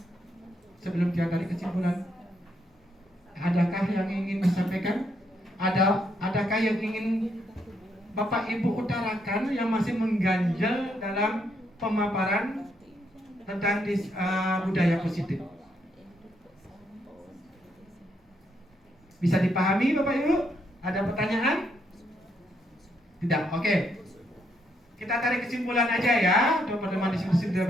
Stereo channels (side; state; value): both; normal; correlation 0.76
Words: sebelum kita tarik kesimpulan. Adakah yang ingin disampaikan? Adakah yang ingin Bapak Ibu utarakan yang masih mengganjal dalam pemaparan tentang budaya positif? Bisa dipahami Bapak Ibu? Ada pertanyaan? Tidak, oke. Kita tarik kesimpulan aja ya untuk pertemuan diskusi budaya